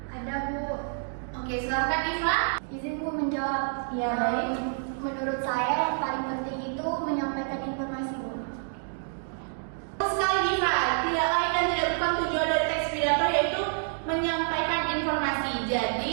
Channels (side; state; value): left; silent; digital silence